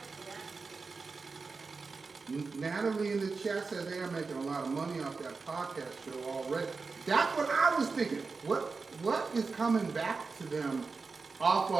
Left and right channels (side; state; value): left; quieter; 4.4 dB